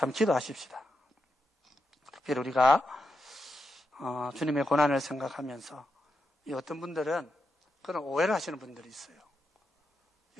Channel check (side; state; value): both; normal; correlation 0.86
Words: 한번 기도하십시다. 특별히 우리가 주님의 고난을 생각하면서 이 어떤 분들은 그런 오해를 하시는 분들이 있어요.